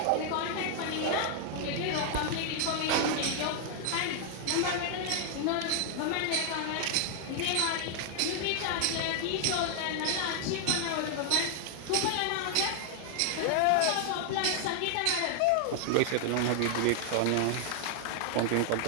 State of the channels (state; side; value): different; both; correlation 0.00